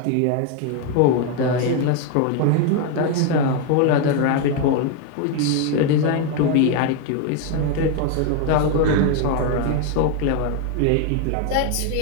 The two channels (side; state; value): both; different; correlation 0.01